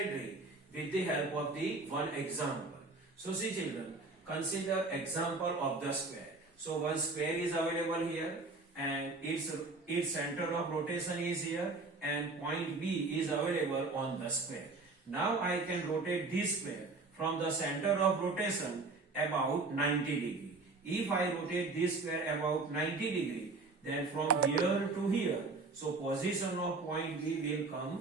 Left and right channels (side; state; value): left; quieter; 3.6 dB